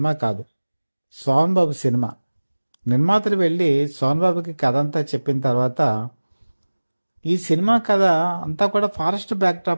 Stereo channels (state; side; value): inverted; both; correlation -1.00